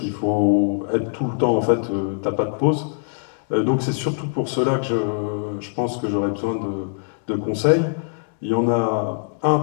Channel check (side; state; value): right; silent; digital silence